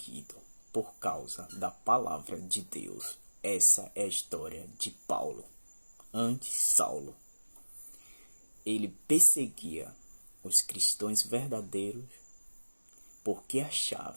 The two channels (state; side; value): inverted; both; correlation -1.00